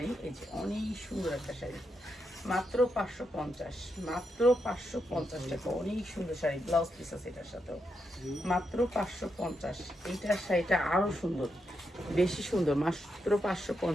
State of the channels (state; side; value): normal; both; correlation 0.83